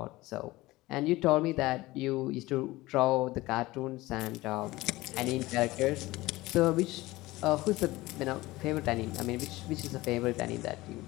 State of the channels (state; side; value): quieter; right; 19.2 dB